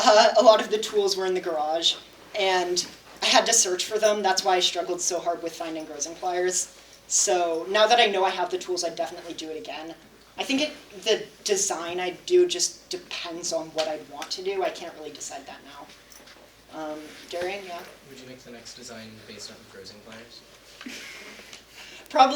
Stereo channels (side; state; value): both; identical; correlation 1.00